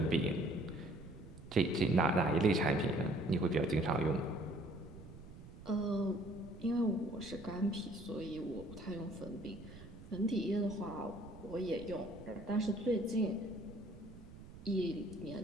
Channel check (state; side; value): noise; right; rumble, 16 dB below the sound